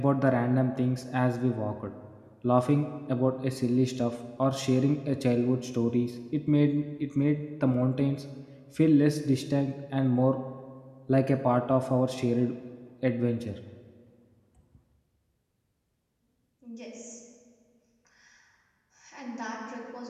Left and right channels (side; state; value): both; identical; correlation 1.00